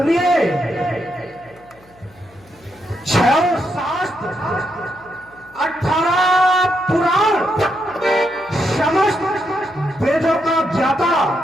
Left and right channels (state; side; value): noise; left; hum, 28 dB below the sound